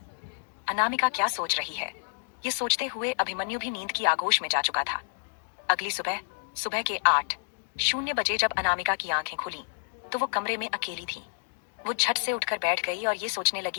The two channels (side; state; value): right; silent; digital silence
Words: अनामिका क्या सोच रही है, ये सोचते हुए अभिमन्यु भी नींद की आगोश में जा चुका था। अगली सुबह सुबह के 8:00 जब अनामिका की आंखें खुली तो वो कमरे में अकेली थी। वो झट से उठकर बैठ गई और ये सोचने